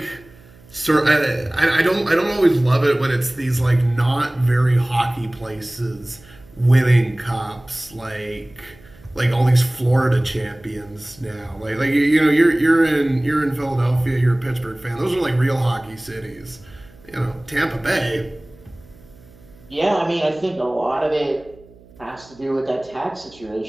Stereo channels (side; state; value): right; noise; hum, 25 dB below the sound